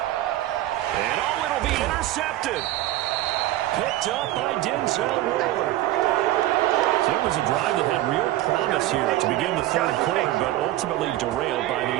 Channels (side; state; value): left; quieter; 15.2 dB